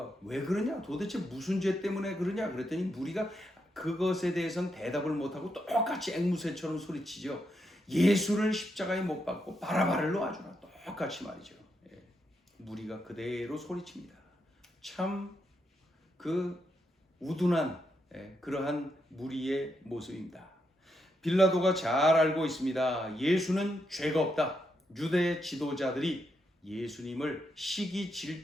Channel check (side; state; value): both; normal; correlation 0.81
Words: 왜 그러냐? 도대체 무슨 죄 때문에 그러냐? 그랬더니 무리가 그것에 대해서는 대답을 못하고 똑같이 앵무새처럼 소리치죠. 예수를 십자가에 못 박고 바라바를 놓아주라. 똑같이 말이죠. 무리가 그대로 소리칩니다. 참 그 우둔한 그러한 무리의 모습입니다. 빌라도가 잘 알고 있습니다. 예수는 죄가 없다. 유대 지도자들이 예수님을 시기